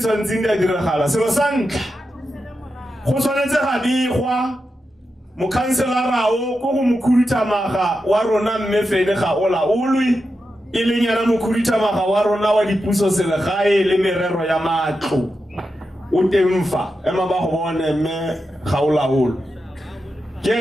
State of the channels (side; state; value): both; normal; correlation 0.89